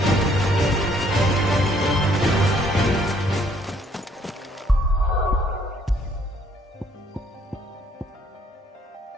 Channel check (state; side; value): normal; both; correlation 0.65